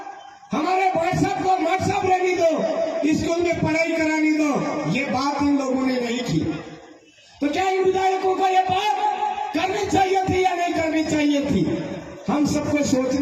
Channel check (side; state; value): both; identical; correlation 1.00